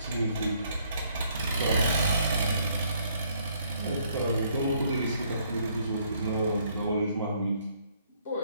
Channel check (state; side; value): inverted; both; correlation -0.67